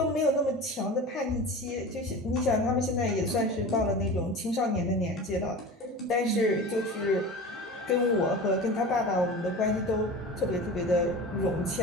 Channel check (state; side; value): normal; both; correlation 0.33